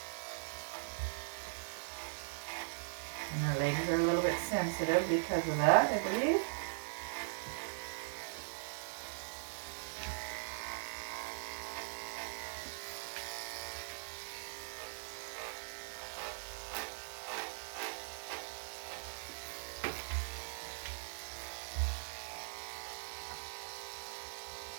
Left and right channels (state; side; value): silent; left; digital silence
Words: And her legs are a little bit sensitive because of that, I believe.